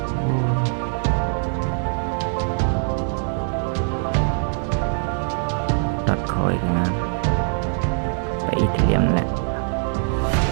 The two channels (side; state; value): left; silent; digital silence